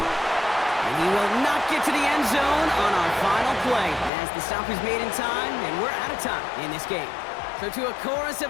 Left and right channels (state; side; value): drops out; right; at 4.1 s